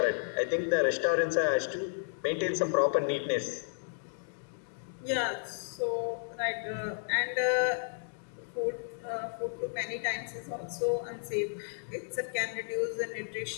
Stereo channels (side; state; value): right; silent; digital silence